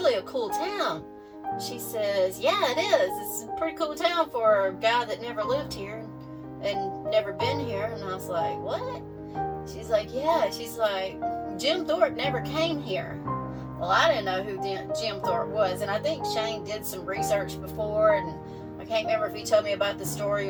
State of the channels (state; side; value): identical; both; correlation 1.00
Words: a cool town. She says, yeah, it is. It's a pretty cool town for a guy that never lived here and never been here. And I was like, what? She's like, yeah. She's like, Jim Thorpe never came here. Well, I didn't know who Jim Thorpe was, and I think Shane did some research before, and I can't remember if he told me about the story